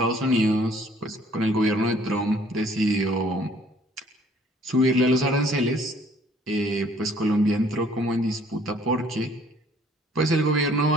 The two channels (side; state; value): both; normal; correlation 0.59